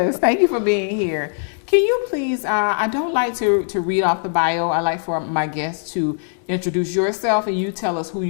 thank you for being here. Can you please, I don't like to read off the bio. I like for my guests to introduce yourself and you tell us who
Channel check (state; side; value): silent; right; 65 dB below the other